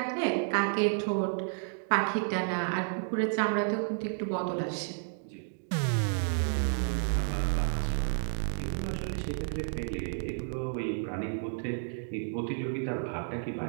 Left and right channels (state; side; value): silent; left; digital silence